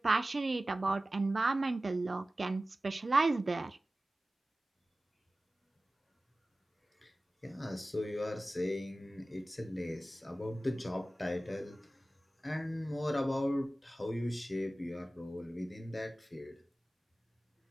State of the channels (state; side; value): normal; both; correlation 0.96